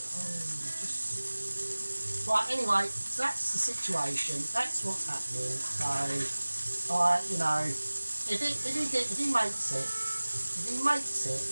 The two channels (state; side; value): inverted; both; correlation -1.00